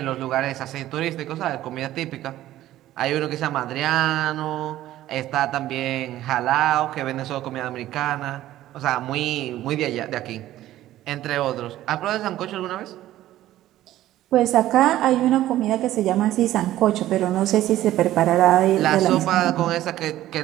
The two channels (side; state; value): left; quieter; 14.1 dB